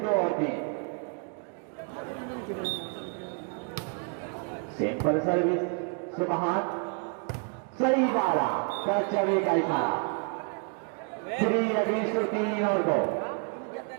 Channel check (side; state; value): left; quieter; 39.5 dB